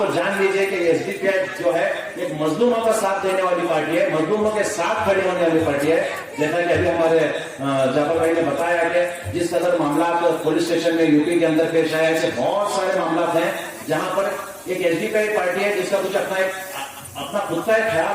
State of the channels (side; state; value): both; identical; correlation 1.00